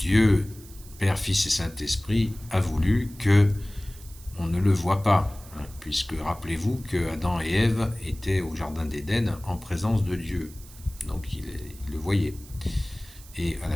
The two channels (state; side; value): noise; right; hiss, 20 dB below the sound